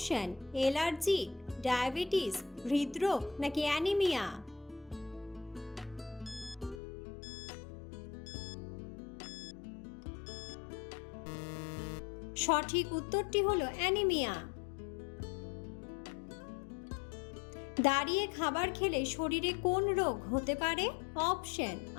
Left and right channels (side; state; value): right; drops out; at 6.8 s